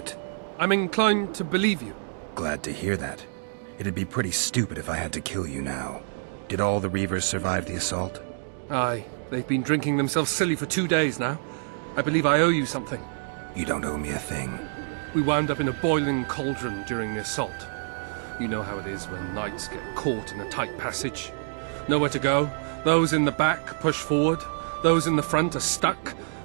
I'm inclined to believe you. Glad to hear that. It'd be pretty stupid if I had to kill you now. Did all the Reavers survive the assault? Aye, they've been drinking themselves silly for 2 days now. I believe I owe you something. You don't owe me a thing. We wound up in a boiling cauldron during the assault. You know how it is when knights get caught in a tight passage. Nowhere to go. Those in the back push forward. Those in the front are stuck.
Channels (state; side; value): silent; left; digital silence